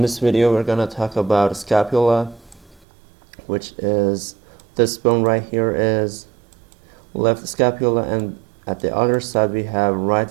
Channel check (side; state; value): left; drops out; at 2.8 s